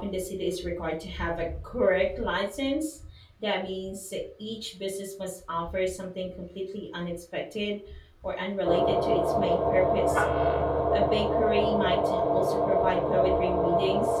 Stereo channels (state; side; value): identical; both; correlation 1.00